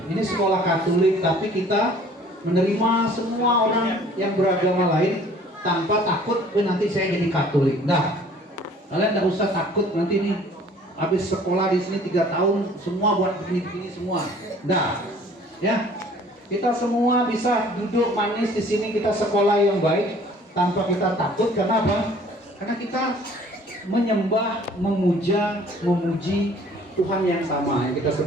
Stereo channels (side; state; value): both; normal; correlation 0.53